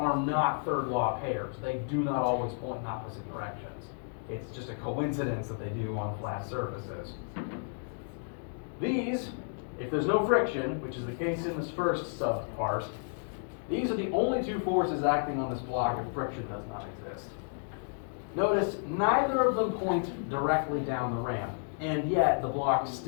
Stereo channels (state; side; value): silent; right; 57 dB below the other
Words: not third law pairs. They do not always point in opposite directions. It's just a coincidence that they do on flat surfaces. These, if there's no friction, which is the case in this first subpart, these are the only 2 forces acting on this block if friction does not exist. Notice neither of them point directly down the ramp, and yet the block